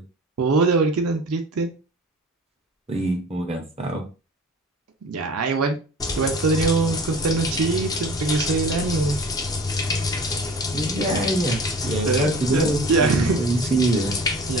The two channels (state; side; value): normal; both; correlation 0.41